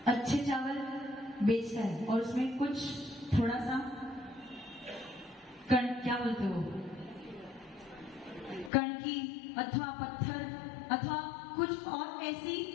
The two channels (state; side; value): drops out; right; at 8.7 s